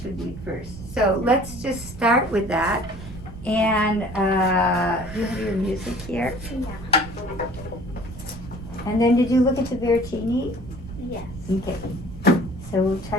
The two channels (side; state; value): right; noise; rumble, 13 dB below the sound